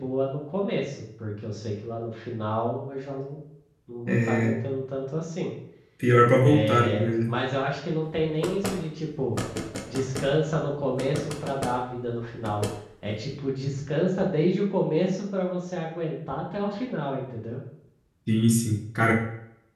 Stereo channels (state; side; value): identical; both; correlation 1.00